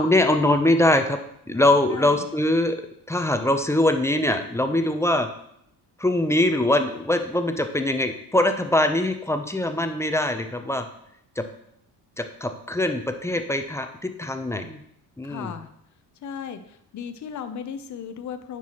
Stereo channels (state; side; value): normal; both; correlation 0.65